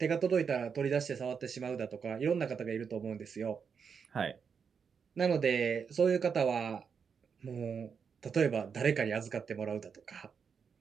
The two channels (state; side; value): quieter; left; 6.3 dB